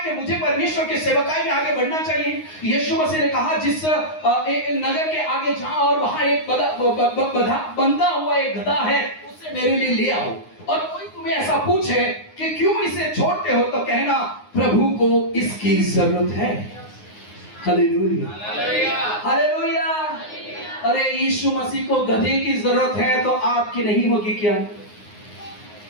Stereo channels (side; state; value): right; late; 9.6 ms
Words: कि मुझे परमेश्वर की सेवकाई में आगे बढ़ना चाहिए? यीशु मसीह ने कहा, जिस नगर के आगे जाओ और वहां एक बंधा हुआ एक गधा है, उससे मेरे लिए ले आओ। और कोई तुम्हें ऐसा पूछे कि क्यों इसे छोड़ते हो, तो कहना प्रभु को इसकी जरूरत है। Hallelujah, hallelujah. अरे यीशु मसीह को गधे की जरूरत है तो आपकी नहीं होगी क्या?